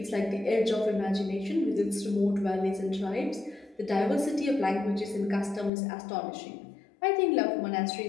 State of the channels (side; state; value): right; drops out; at 5.7 s